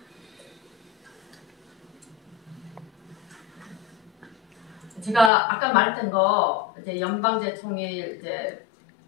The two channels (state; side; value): drops out; right; at 5.3 s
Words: 제가 아까 말했던 거 이제 연방제 통일 이제